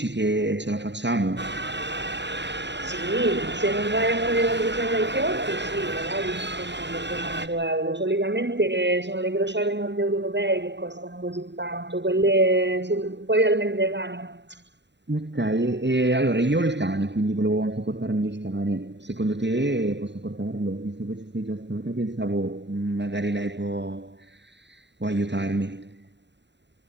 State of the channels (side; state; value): left; late; 0.52 ms